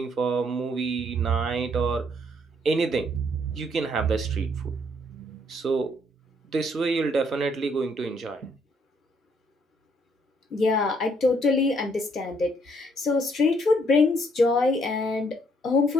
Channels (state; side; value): normal; both; correlation 0.68